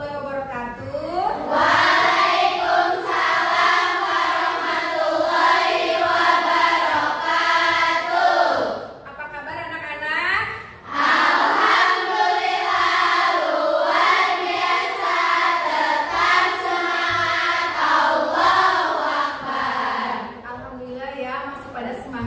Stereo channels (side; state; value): both; identical; correlation 1.00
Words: wabarakatuh. Waalaikumsalam warahmatullahi wabarakatuh. Apa kabar anak-anak? Alhamdulillah luar biasa, tetap semangat, Allahu Akbar. Alhamdulillah ya, masih pada